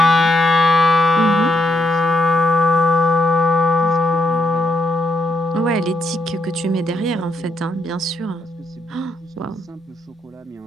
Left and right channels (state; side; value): normal; both; correlation 0.78